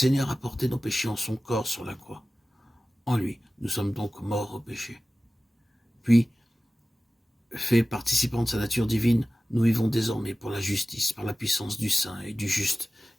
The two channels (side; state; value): both; normal; correlation 0.96